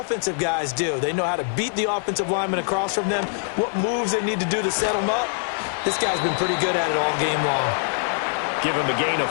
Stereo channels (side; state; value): right; silent; 63 dB below the other